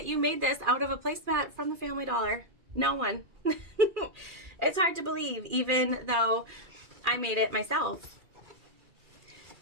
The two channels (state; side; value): late; left; 2.4 ms